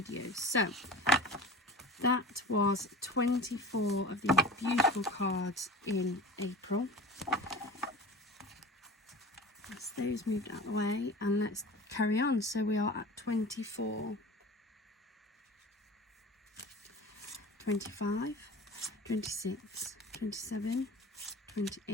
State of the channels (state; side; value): normal; both; correlation 0.36